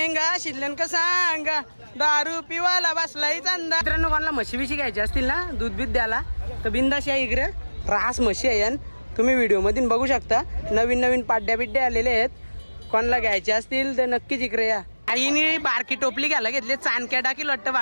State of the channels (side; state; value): both; inverted; correlation -1.00